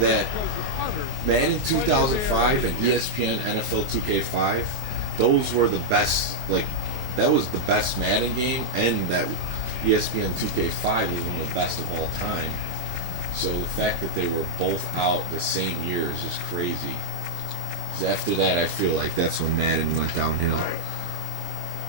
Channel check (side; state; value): left; late; 24 ms